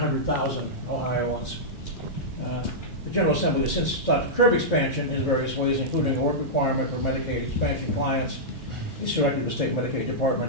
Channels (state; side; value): normal; both; correlation -0.10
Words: Ohioans. The General Assembly has since sought to curb expansion in various ways, including a work requirement for Medicaid expansion clients. It's directed the state Medicaid